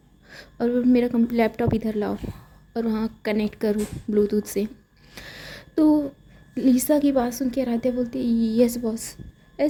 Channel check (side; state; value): both; identical; correlation 1.00